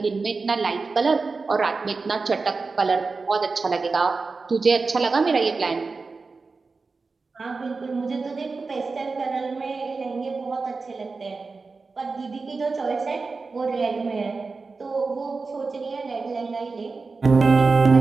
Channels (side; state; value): left; quieter; 4.2 dB